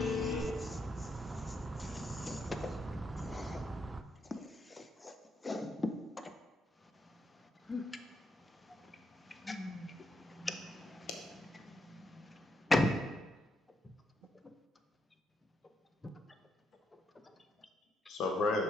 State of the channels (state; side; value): normal; both; correlation 0.79